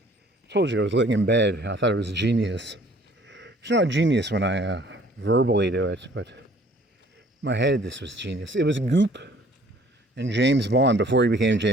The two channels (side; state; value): both; normal; correlation 0.56